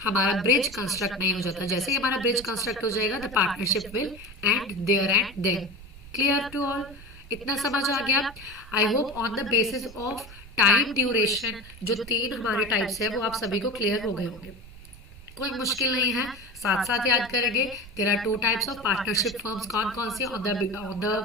ब्रिज कंस्ट्रक्ट नहीं हो जाता। जैसे ही हमारा ब्रिज कंस्ट्रक्ट हो जाएगा the partnership will end there and then. Clear to all? इतना समझ आ गया? I hope on the basis of time duration, जो 3 हमारे टाइप्स है वो आप सभी को क्लियर हो गए होंगे, कोई मुश्किल नहीं है, साथ साथ याद करेंगे। There are 2 types of partnership firms, कौन कौन सी, on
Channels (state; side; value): noise; right; rumble, 18 dB below the sound